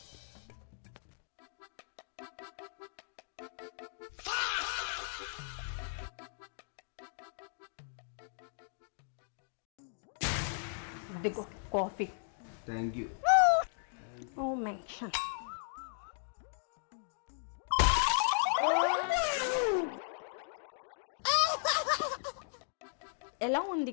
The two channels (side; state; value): right; silent; digital silence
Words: ఇదిగో coffee. Thank you. No mention. ఎలా